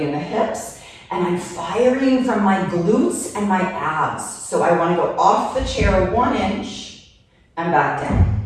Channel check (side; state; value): both; identical; correlation 1.00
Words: in the hips, and I'm firing from my glutes and my abs. So I want to go off the chair 1 inch and back down.